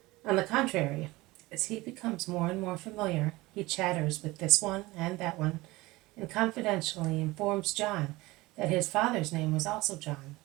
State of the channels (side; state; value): left; quieter; 20.6 dB